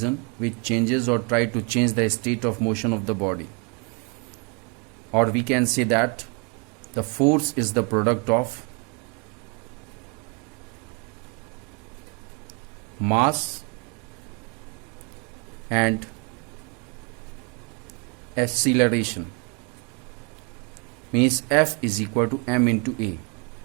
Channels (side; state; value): left; quieter; 34.3 dB